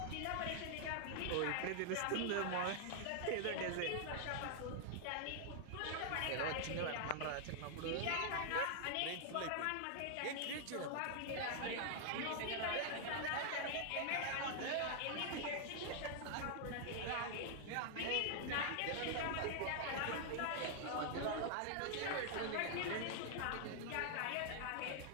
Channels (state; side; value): different; both; correlation -0.01